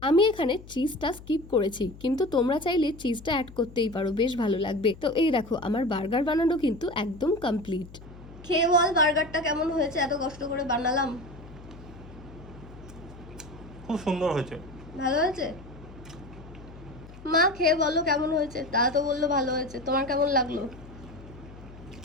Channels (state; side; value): noise; left; hum, 18 dB below the sound